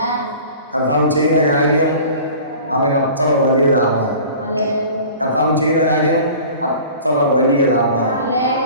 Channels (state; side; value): inverted; both; correlation -0.43